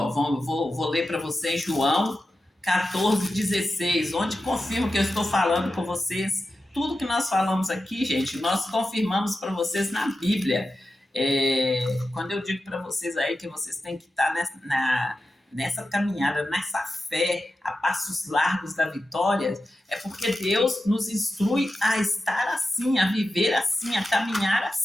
Vou ler para vocês João 14:16, onde confirma que eu estou falando com vocês. Tudo que nós falamos aqui, gente, nós confirmamos para vocês na Bíblia. Quando eu digo para vocês aí que vocês têm que estar nessa caminhada, nessa fé, a passos largos da vitória, é porque Deus nos instrui a estar assim, a viver assim, a caminhar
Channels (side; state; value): both; normal; correlation 0.92